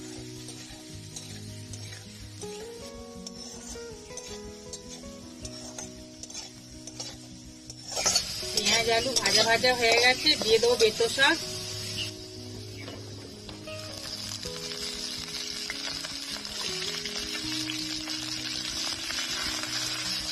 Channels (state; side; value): identical; both; correlation 1.00